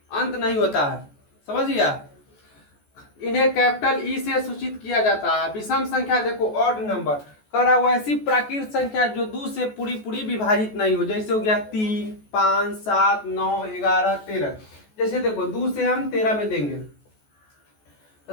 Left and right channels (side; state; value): right; late; 14 ms